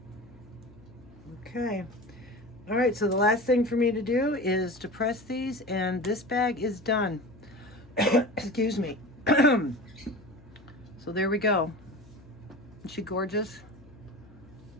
Okay. All right, so the last thing for me to do is to press these, and this bag is done. Excuse me. So there we go. Isn't she gorgeous?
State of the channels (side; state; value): left; noise; hum, 23 dB below the sound